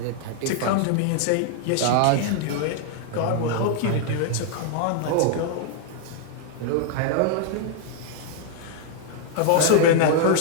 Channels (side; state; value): both; different; correlation 0.00